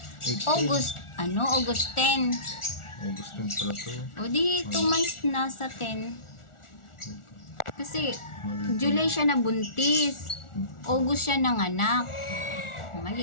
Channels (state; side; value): late; right; 1.4 ms